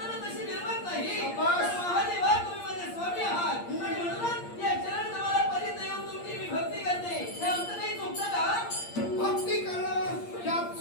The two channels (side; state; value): right; late; 8.6 ms